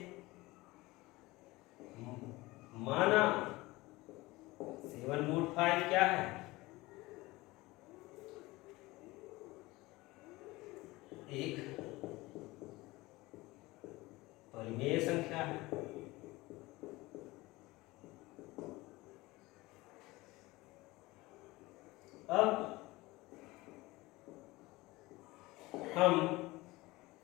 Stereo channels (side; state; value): right; quieter; 20.7 dB